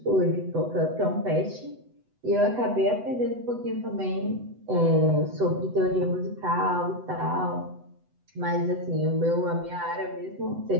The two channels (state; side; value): late; left; 8.0 ms